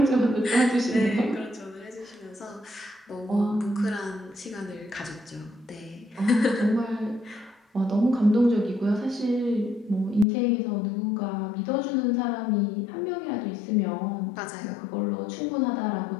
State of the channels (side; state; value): right; drops out; at 10.2 s